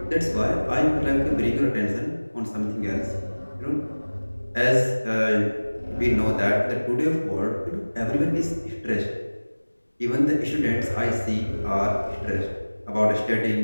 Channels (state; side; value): inverted; both; correlation -1.00